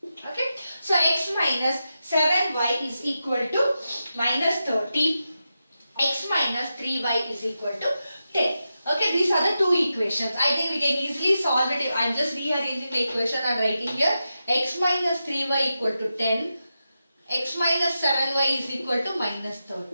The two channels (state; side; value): inverted; both; correlation -0.90